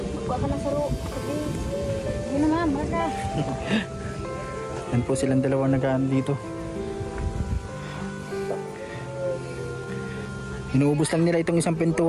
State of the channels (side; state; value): both; identical; correlation 1.00